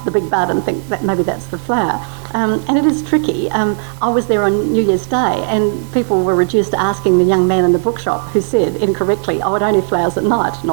the big bud, and think that maybe that's the flower. And it is tricky. I was there on New Year's Day, and people were reduced to asking the young man in the bookshop who said incorrectly, "Oh, it only flowers at night."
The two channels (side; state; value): left; silent; digital silence